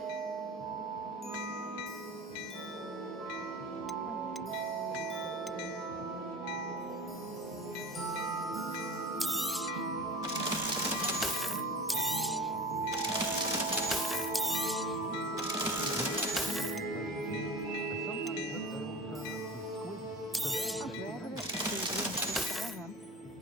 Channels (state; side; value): normal; both; correlation 0.34